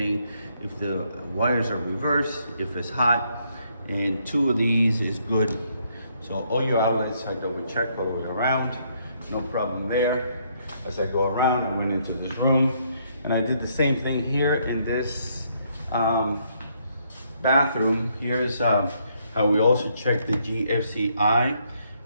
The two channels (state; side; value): inverted; both; correlation -0.71